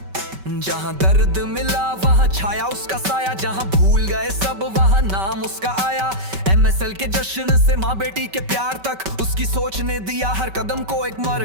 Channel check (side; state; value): left; late; 5.2 ms